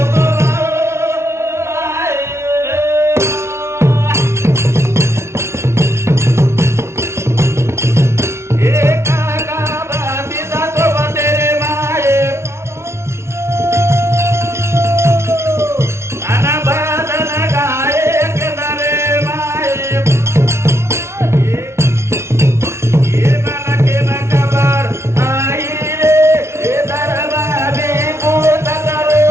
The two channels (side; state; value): left; late; 0.13 ms